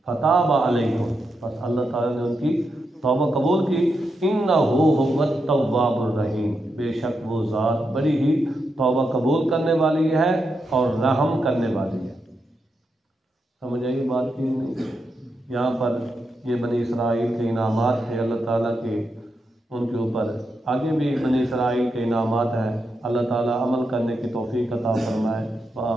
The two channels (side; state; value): both; normal; correlation 0.85